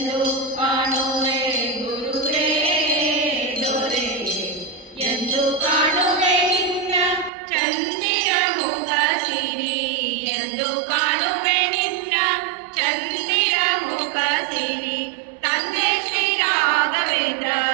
ಕಾಣುವೆ ಗುರುವೇ ದೊರೆ ಎಂದು ಕಾಣುವೆ ನಿನ್ನ ಚಂದಿರ ಮುಖ ಸಿರಿ ಎಂದು ಕಾಣುವೆ ನಿನ್ನ ಚಂದಿರ ಮುಖ ಸಿರಿ ತಂದೆ ಶ್ರೀ ರಾಘವೇಂದ್ರ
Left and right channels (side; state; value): left; drops out; at 7.3 s